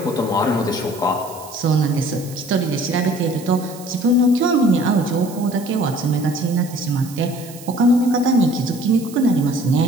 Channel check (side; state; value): right; noise; hiss, 18 dB below the sound